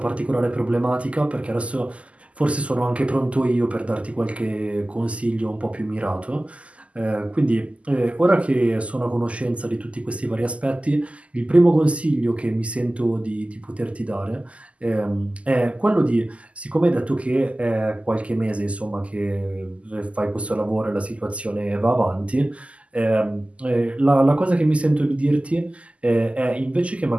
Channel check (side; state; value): left; late; 0.063 ms